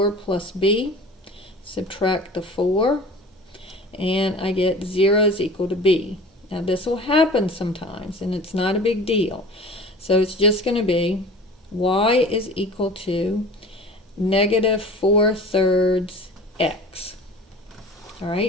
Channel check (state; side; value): normal; both; correlation 0.41